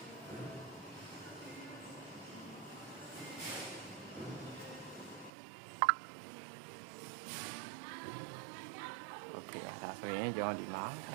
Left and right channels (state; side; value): drops out; left; at 5.3 s